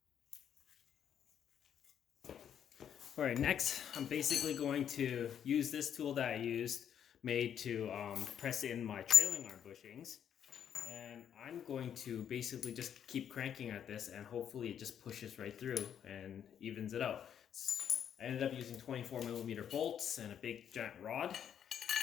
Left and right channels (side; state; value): right; quieter; 9.0 dB